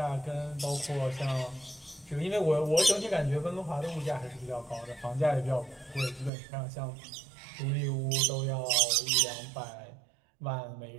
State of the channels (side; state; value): left; drops out; at 6.3 s